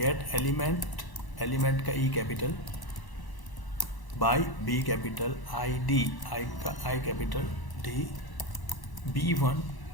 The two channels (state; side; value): late; right; 1.0 ms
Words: element, element का E capital, by B capital, ID, I का I capital, D, B1